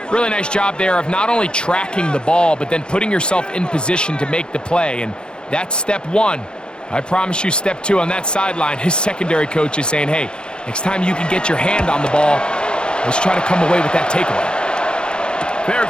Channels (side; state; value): right; late; 0.050 ms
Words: Really nice job there of not only tracking the ball, but then putting yourself in position to make the play, and that's step one. I promise you step two on that sideline. His secondary coach is saying, hey, next time you can get your hand on the ball, let's try to come away with that takeaway. Fair